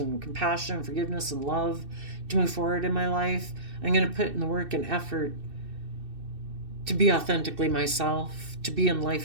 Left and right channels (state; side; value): late; left; 2.7 ms